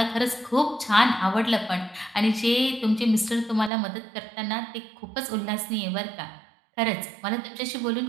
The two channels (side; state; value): left; drops out; at 3.7 s